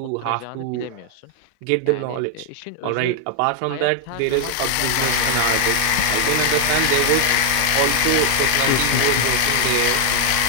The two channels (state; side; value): different; both; correlation 0.00